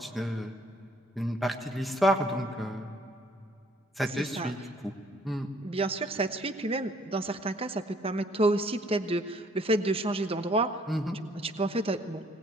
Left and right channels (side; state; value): both; normal; correlation 0.61